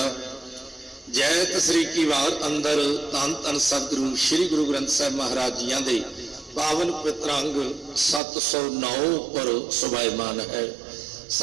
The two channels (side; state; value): left; drops out; at 8.2 s